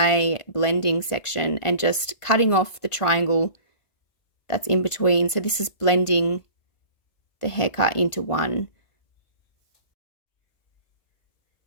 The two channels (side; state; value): right; late; 1.5 ms